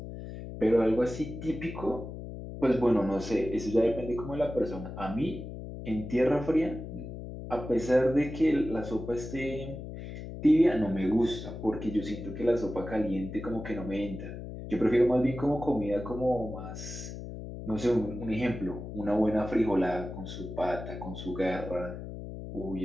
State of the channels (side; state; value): left; noise; hum, 9 dB below the sound